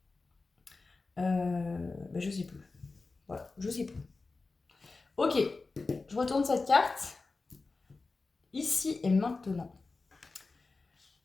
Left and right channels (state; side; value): quieter; right; 3.8 dB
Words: bah, je sais plus. Voilà, je sais plus. Ok, je retourne cette carte. Ici et maintenant.